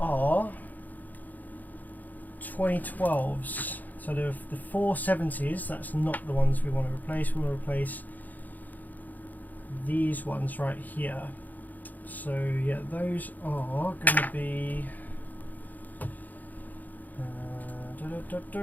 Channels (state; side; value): late; right; 0.083 ms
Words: 2012s. So the 470s, that's not the ones we want to replace. We want to replace these ones right here. So yeah, those are going to be